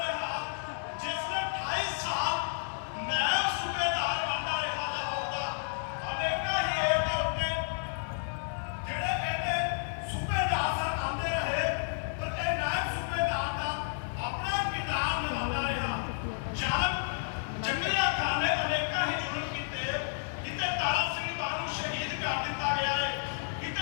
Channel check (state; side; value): silent; right; digital silence